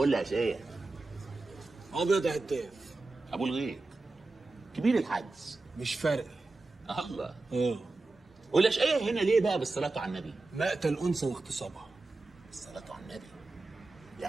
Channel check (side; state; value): left; quieter; 3.2 dB